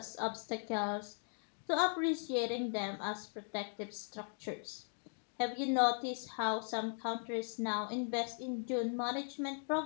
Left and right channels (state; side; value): silent; right; 52 dB below the other